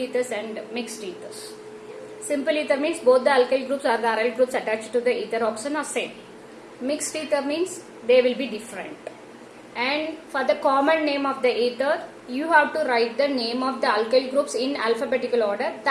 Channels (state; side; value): identical; both; correlation 1.00